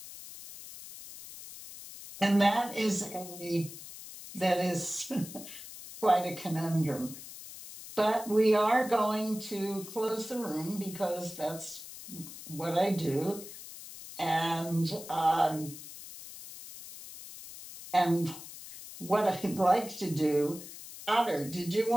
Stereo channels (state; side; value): noise; left; hiss, 14 dB below the sound